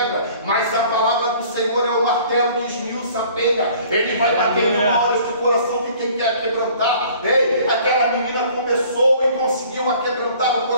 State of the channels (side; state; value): both; inverted; correlation -0.52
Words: mas a palavra do Senhor é o martelo que esmiuça a penha. Ele vai batendo na hora do coração de quem quer quebrantar. Aquela menina começou e conseguiu quebrantar o